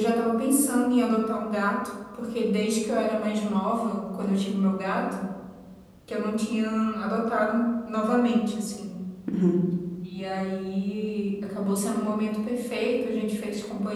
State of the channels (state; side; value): identical; both; correlation 1.00